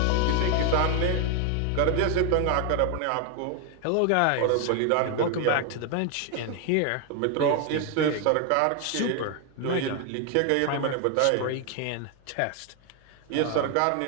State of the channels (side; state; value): both; different; correlation 0.01